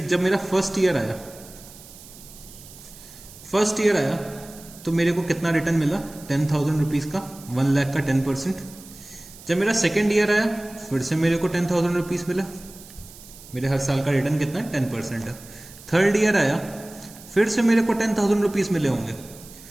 जब मेरा फर्स्ट ईयर आया तो मेरे को कितना रिटर्न मिला, 10,000 रुपीज का, 1 लाख का 10%। जब मेरा सेकेंड ईयर आया फिर से मेरे को 10,000 रुपीज मिला, मेरे हर साल का रिटर्न कितना है, 10% है। थर्ड ईयर आया फिर से मेरे को 10,000 रुपीज मिले होंगे,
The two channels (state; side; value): noise; right; hiss, 19 dB below the sound